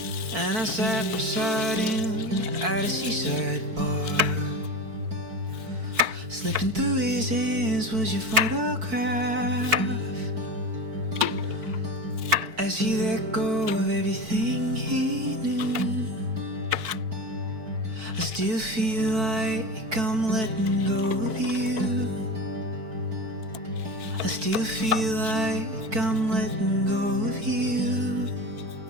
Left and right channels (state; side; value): late; left; 4.5 ms